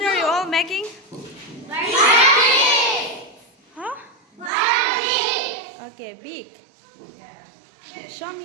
are you all making? Huh? Okay, big. Show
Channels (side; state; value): left; drops out; at 4.5 s